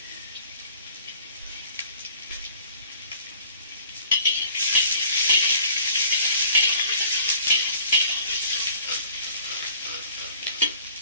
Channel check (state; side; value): inverted; both; correlation -0.51